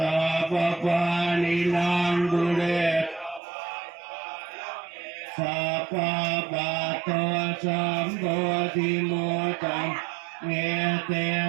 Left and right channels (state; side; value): drops out; left; at 3.4 s